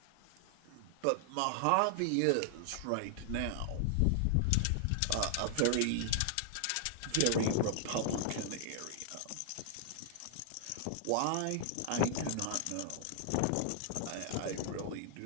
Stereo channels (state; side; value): different; both; correlation -0.01